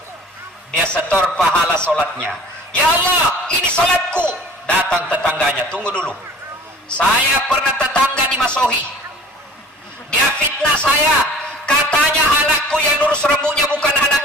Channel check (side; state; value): both; normal; correlation 0.47